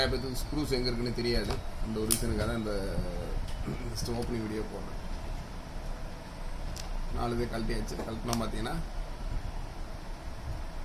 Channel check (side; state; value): both; identical; correlation 1.00